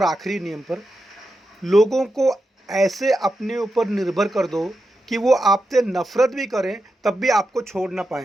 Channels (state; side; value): normal; both; correlation 0.88